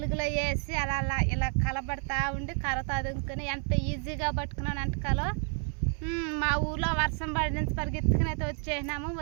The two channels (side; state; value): left; quieter; 39.7 dB